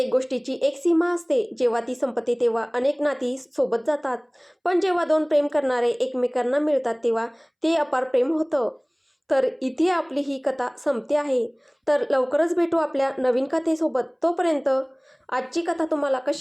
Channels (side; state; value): both; identical; correlation 1.00